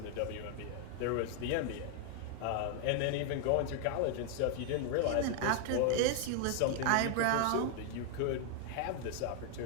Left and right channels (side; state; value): both; different; correlation 0.00